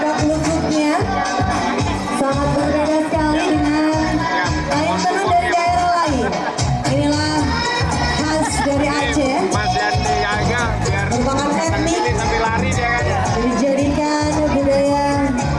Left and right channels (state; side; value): identical; both; correlation 1.00